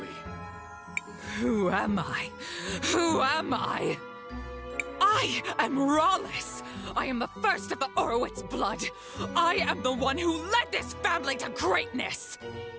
Who am I? Who am I? I am Rallis! I am the first of the Orowitz blood! I am the one who led this family to greatness!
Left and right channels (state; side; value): identical; both; correlation 1.00